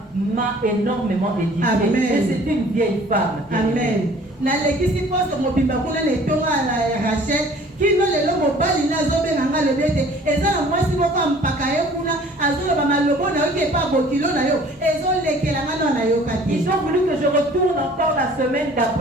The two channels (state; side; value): normal; both; correlation 0.51